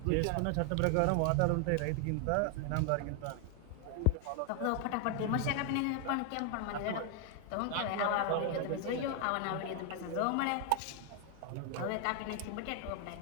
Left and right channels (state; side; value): different; both; correlation 0.00